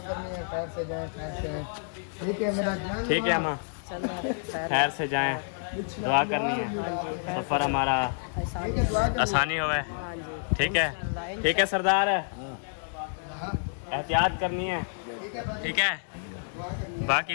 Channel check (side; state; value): right; silent; digital silence